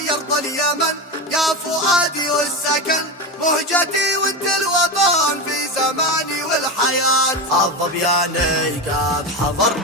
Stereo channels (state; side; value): normal; both; correlation 0.18